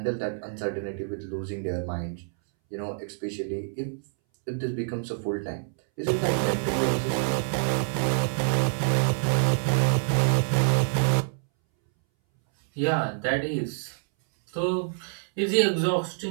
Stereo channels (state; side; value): silent; left; 60 dB below the other